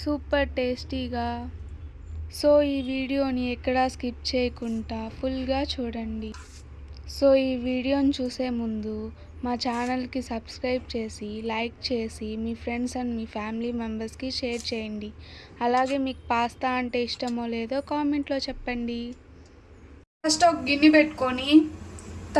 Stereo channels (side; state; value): both; identical; correlation 1.00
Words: సూపర్ టేస్టీగా. సో ఈ వీడియోని ఎక్కడా స్కిప్ చేయకుండా ఫుల్గా చూడండి. సో ఈ వీడియోని చూసే ముందు మా ఛానల్కి సబ్స్క్రైబ్ చేసి, లైక్ చేసి, మీ ఫ్రెండ్స్ అండ్ మీ ఫ్యామిలీ మెంబర్స్కి షేర్ చేయండి. అలాగే మీకు పాస్తా అంటే ఇష్టమో లేదో కామెంట్లో చెప్పండి. ఫస్ట్ ఒక గిన్నె పెట్టుకొని